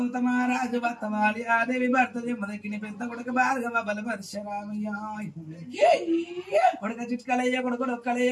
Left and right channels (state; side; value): identical; both; correlation 1.00